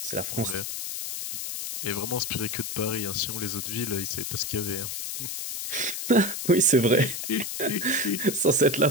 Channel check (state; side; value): noise; left; hiss, 4 dB below the sound